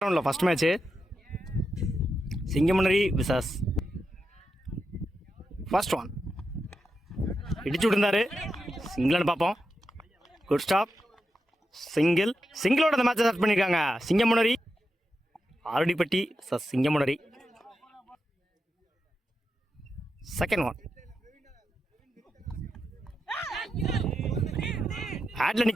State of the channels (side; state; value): both; normal; correlation 0.87